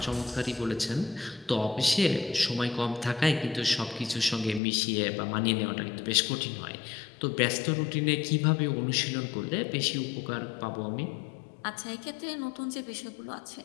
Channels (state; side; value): drops out; right; at 4.6 s